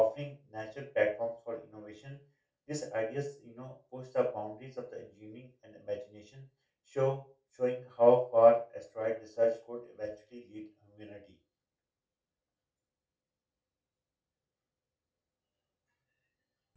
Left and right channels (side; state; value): both; identical; correlation 1.00